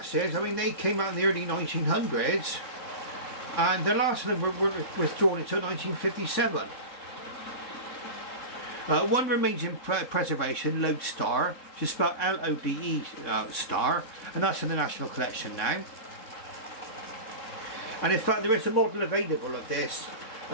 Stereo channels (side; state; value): right; late; 3.7 ms